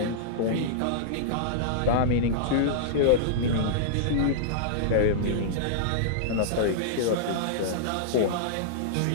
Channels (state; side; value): different; both; correlation -0.02